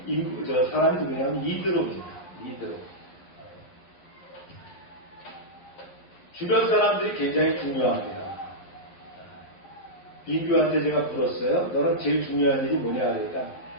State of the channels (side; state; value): right; late; 11 ms